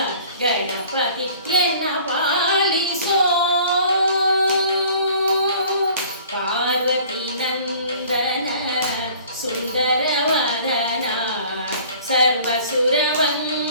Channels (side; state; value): both; inverted; correlation -0.50